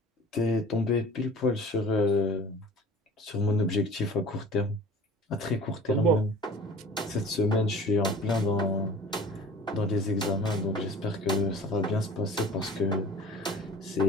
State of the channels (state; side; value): normal; both; correlation 0.44